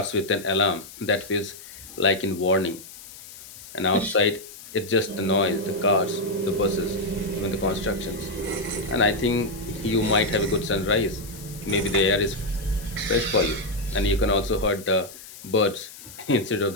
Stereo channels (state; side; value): noise; left; hiss, 16 dB below the sound